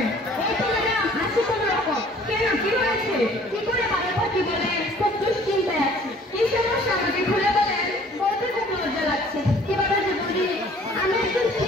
এই তো ম্যাডাম আছি কোনো রকম। কেন, কি হয়েছে? কি করে ভালো থাকি বলেন? খুব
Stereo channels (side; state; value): both; normal; correlation 0.54